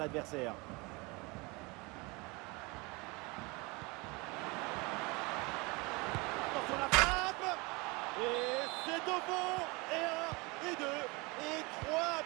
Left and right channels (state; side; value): quieter; left; 26.4 dB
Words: Attention la frappe. Et c'est au fond. Et 1, et 2, et 3